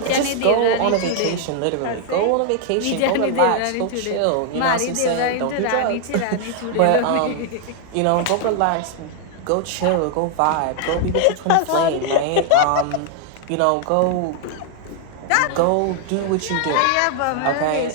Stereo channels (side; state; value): both; different; correlation 0.00